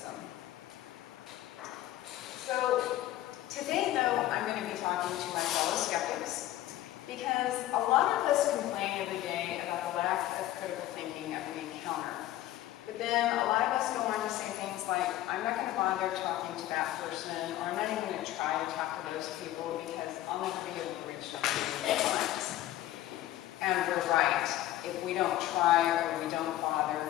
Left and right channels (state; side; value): quieter; right; 14.4 dB